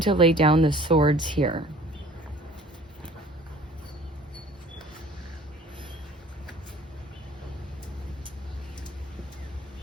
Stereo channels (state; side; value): normal; both; correlation 0.49